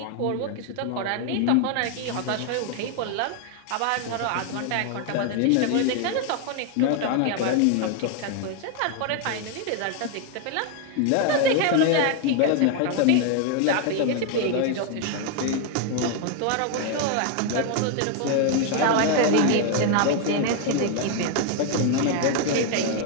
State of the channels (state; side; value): different; both; correlation 0.00